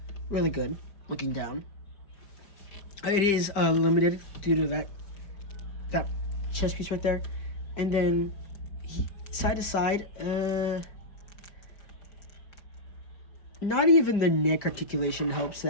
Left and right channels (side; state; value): right; late; 5.0 ms